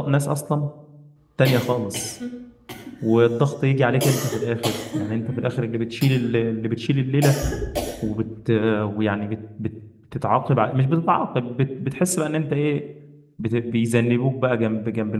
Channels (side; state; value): both; identical; correlation 1.00